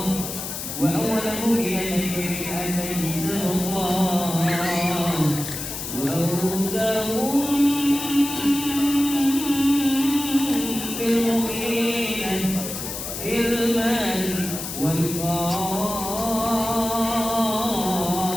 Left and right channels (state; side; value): noise; left; hiss, 6 dB below the sound